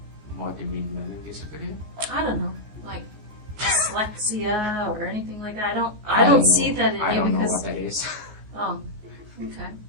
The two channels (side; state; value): left; late; 14 ms